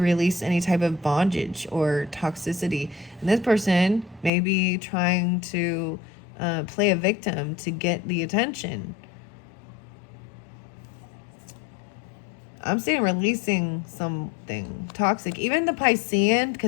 any type of bondage or toxicity. And this person may be trying to play a victim to get the attention. I'm saying releasing something toxic. Even the Piscean,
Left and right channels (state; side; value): drops out; right; at 4.3 s